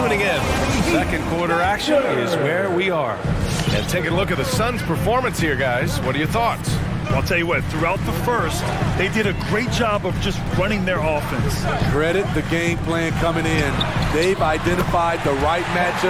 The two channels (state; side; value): identical; both; correlation 1.00